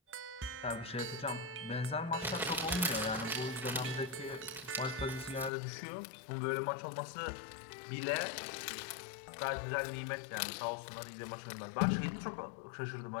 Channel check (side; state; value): right; drops out; at 5.5 s